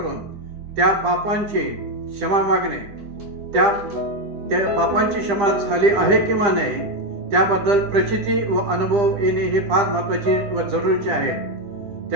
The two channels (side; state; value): left; late; 10 ms